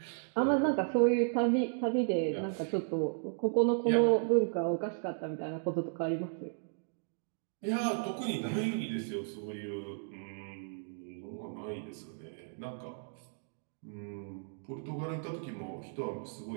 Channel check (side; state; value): left; silent; digital silence